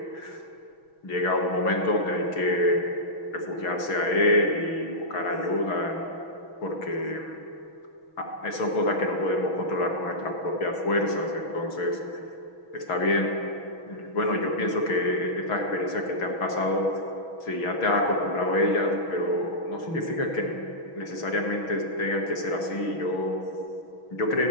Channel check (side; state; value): right; late; 6.1 ms